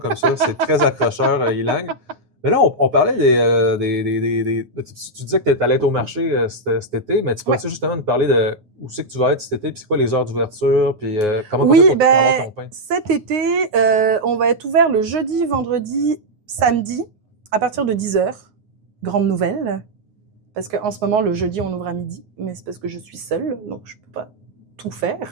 ça. C'est très accrocheur, Ilang. Mais là, on parlait tu disais que tu allais être au marché cet été, mais tu peux-tu justement nous parler de où c'est que tu vas être cet été, puis c'est quoi les heures d'ouverture, puis comment tu fais pour avoir ton pain? Cet été, on va être ouvert le jeudi, vendredi, samedi, à partir de 10h. Grande nouvelle. Parce qu'en ce moment, le jeudi, on ouvre à midi, mais c'est parce que je suis seule, donc je ne peux pas tout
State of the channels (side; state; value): left; late; 9.5 ms